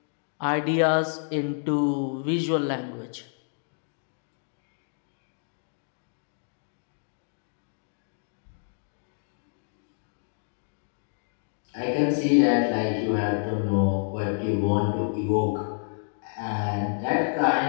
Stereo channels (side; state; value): right; silent; digital silence